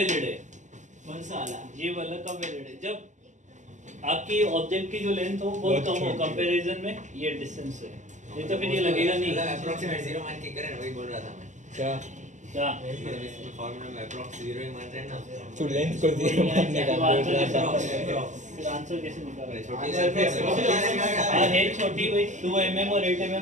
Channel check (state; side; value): late; left; 0.35 ms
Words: है? कौन सा वाला ये वाला कब वैलिड है? जब आपकी ऑब्जेक्ट की जो लेंथ हो बहुत कम हो कंपैरिजन में ये डिस्टेंस है, नहीं तो फिर ये लगेगा नहीं। अप्रोक्सीमेट 0 मान के करे ना, वही बोल रहा था मैं। क्या क्या मतलब इसमें फार्मूला में अप्रोक्स 0 ही मान रहे हैं ना। तू लेंथ को 0 मानने का बोल रहा था। फिर आंसर कैसे निकाला? छोटी सी हाँ है छोटी भाई, 2 mm और 8